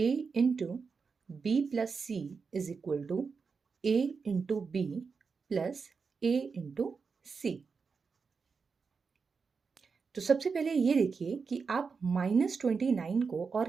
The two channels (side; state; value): left; quieter; 5.2 dB